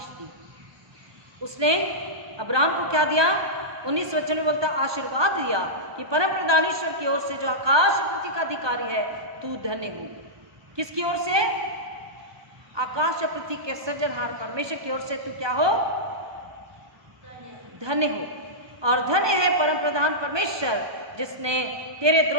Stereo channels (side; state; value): left; late; 1.2 ms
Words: दी। उसने अब्राहम को क्या दिया, 19 वचन में बोलता आशीर्वाद दिया कि परम प्रधान ईश्वर की ओर से जो आकाश पृथ्वी का अधिकारी है, तू धन्य हो। किसकी ओर से, आकाश और पृथ्वी के सृजनहार परमेश्वर की ओर से तू क्या हो, धन्य हो। और धन्य है परम प्रधान परमेश्वर जिसने तेरे